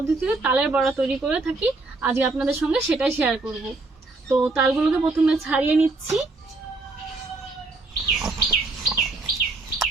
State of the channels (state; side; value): quieter; left; 3.3 dB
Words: তালের বড়া তৈরি করে থাকি, আজকে আপনাদের সঙ্গে সেটাই শেয়ার করব। তো তালগুলোকে প্রথমে ছাড়িয়ে নিচ্ছি।